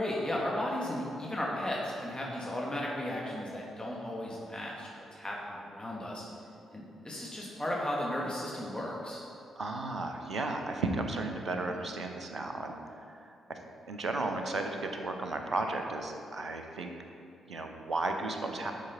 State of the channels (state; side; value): normal; both; correlation 0.78